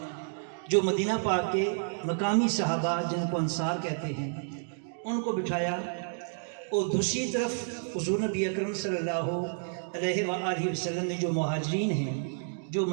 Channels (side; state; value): left; silent; digital silence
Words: جو مدینہ پاک کے مقامی صحابہ جن کو انصار کہتے ہیں، ان کو بٹھایا، اور دوسری طرف حضور نبی اکرم صلی اللہ علیہ وآلہ وسلم نے جو مہاجرین ہیں، جو